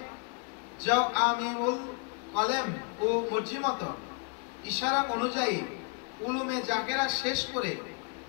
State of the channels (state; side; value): quieter; right; 35.9 dB